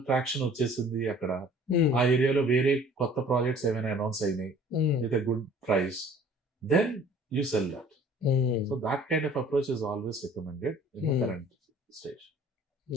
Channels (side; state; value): both; normal; correlation 0.51